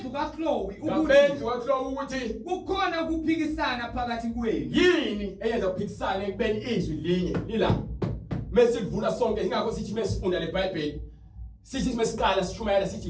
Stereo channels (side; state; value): both; identical; correlation 1.00